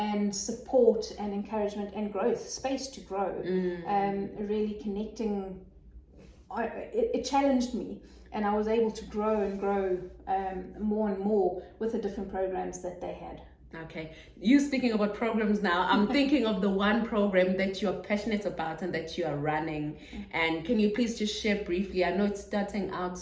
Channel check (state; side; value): identical; both; correlation 1.00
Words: support and encouragement and growth, space to grow. Really connecting, it challenged me, and I was able to grow and grow more and more with the different programs that they had. Okay, you speaking about programs now, I'm thinking of the one program that you're passionate about and that you are running. And can you please just share briefly? I know it's starting out